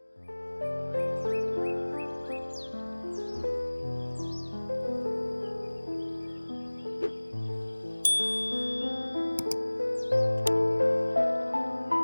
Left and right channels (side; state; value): both; inverted; correlation -1.00